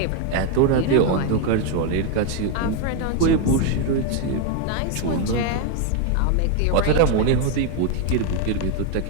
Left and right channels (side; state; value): both; different; correlation 0.01